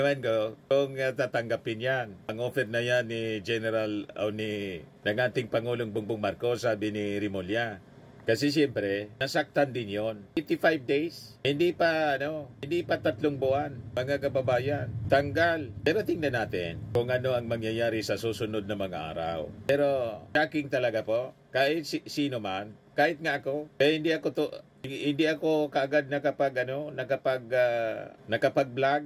ko kung tatanggapin yan. Ang offer na yan ni General o ng ating Pangulong Bongbong Marcos, sabi ni Rimulya. Kasi siyempre, nasaktan din yon. 85 days. Hindi pa 3 buwan, mga kababayan. Tanggal. Pero tingnan natin kung ano ang mangyayari sa susunod na mga araw. Pero shocking talaga po. Kahit sino man, kahit nga ako, hindi ako kaagad nakapag-vlog.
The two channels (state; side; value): identical; both; correlation 1.00